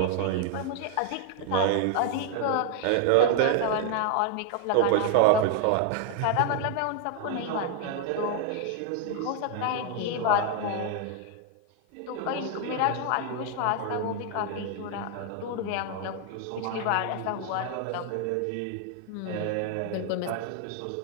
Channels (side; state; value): both; different; correlation 0.00